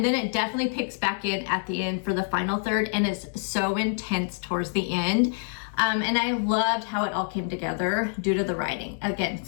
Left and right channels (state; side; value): silent; right; digital silence